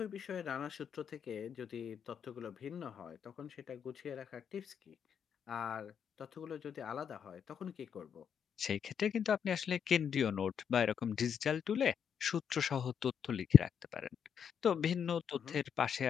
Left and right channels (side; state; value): right; quieter; 7.7 dB